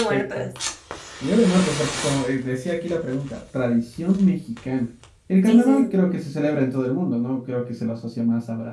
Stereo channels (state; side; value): identical; both; correlation 1.00